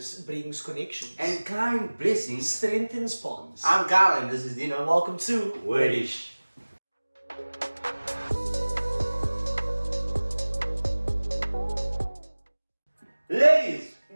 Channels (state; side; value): inverted; both; correlation -1.00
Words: brings connections. And kind blessings strengthens bonds. I'm Carl and this is Deno. Welcome to Wrdish. Ladies